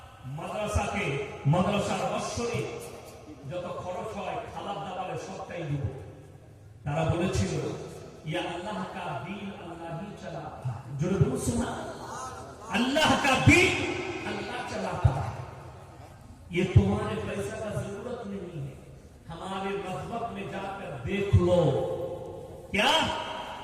মাদ্রাসার বৎসরে যত খরচ হয় খাবার দাবারে সবটাই দিব। তারা বলেছিল ইয়া আল্লাহ কা দিন আল্লাহ হি চালাতা জোরে বলুন সুবহানাল্লাহ अल्लाह का दीन अल्लाह चलाता है, ये तुम्हारे पैसा का जरूरत नहीं है, हमारे मजहब में जाकर देख लो क्या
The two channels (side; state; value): both; identical; correlation 1.00